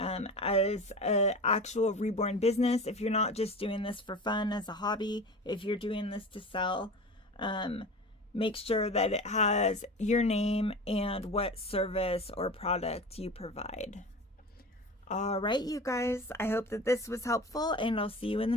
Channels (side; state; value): both; normal; correlation 0.33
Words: an actual Reborn business, if you're not just doing this for fun as a hobby, if you're doing this to sell, make sure that it has your name and what service or product you provide. All right, you guys, I hope that this was helpful, and I'll see you in the